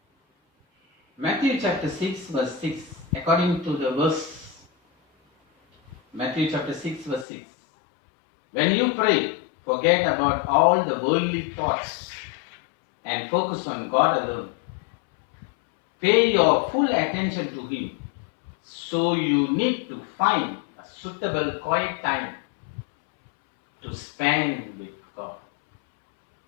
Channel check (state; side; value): drops out; right; at 7.2 s